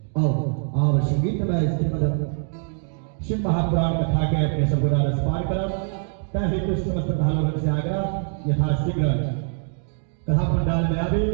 अब संगीतमय श्रीमद् शिव महापुराण कथा के अपने सबको रसपान करब तहि कुछ समस्त भालों से आग्रह यथाशीघ्र कथा पंडाल में आवे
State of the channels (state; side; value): silent; left; 55 dB below the other